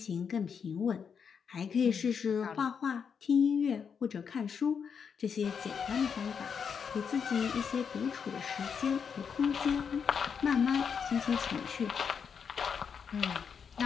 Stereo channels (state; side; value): quieter; right; 6.6 dB